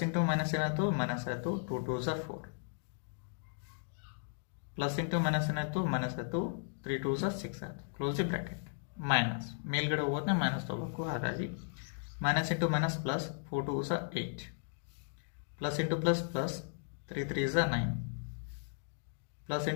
into minus ಏನಾಯಿತು ಮೈನಸ್ ಆಯಿತು, 2 2s are 4, plus into minus ಏನಾಯಿತು ಮೈನಸ್ ಆಯಿತು, 3 2s are 6 ಆಯಿತು. Close the bracket. ಮೈನಸ್ ಮೇಲ್ಗಡೆ ಹೋದ್ರೆ ಮೈನಸ್ ತೊಗೋಬೇಕು, ಹಾಗಾಗಿ minus into minus plus 4 2s are 8, plus into plus plus 3 3s are 9, plus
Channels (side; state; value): right; silent; digital silence